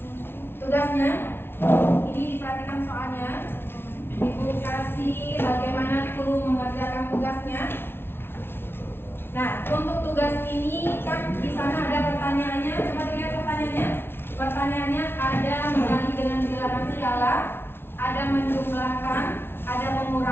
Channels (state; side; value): late; right; 0.11 ms